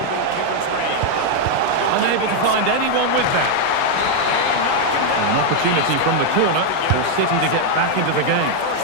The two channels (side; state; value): both; different; correlation 0.00